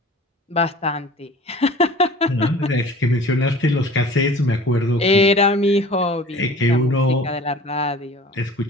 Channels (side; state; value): both; normal; correlation 0.44